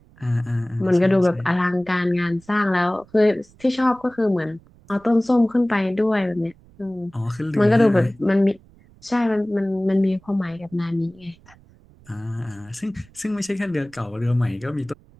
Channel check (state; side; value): noise; right; rumble, 27 dB below the sound